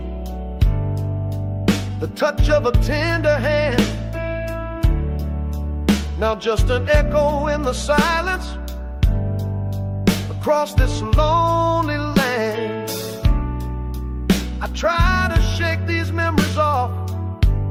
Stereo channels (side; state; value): both; identical; correlation 1.00